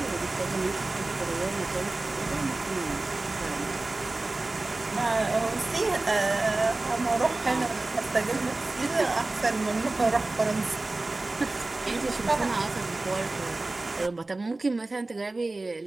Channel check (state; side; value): quieter; left; 3.1 dB